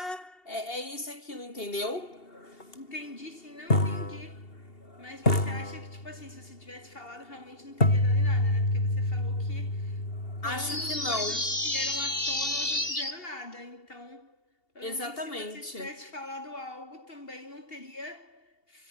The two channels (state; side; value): late; right; 2.8 ms